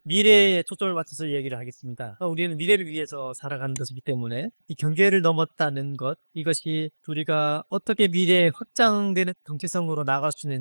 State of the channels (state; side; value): inverted; both; correlation -1.00